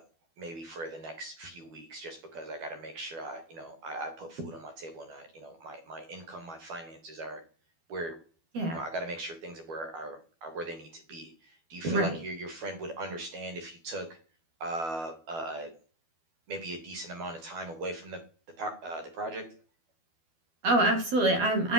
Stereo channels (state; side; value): late; left; 12 ms